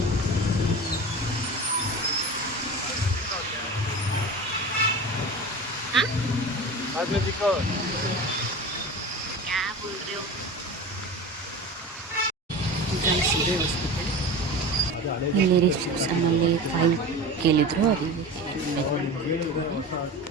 ಹಾಸ್ಪಿಟಲ್ ಇಲ್ಲಿ ರಿಸೆಪ್ಷನ್ನಲ್ಲಿ ಫೈಲ್ ಕೇಳಿದ್ರು, ಅದಕ್ಕೆ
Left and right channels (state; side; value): normal; both; correlation 0.31